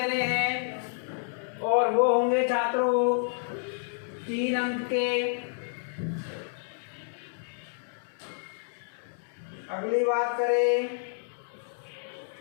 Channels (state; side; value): silent; right; digital silence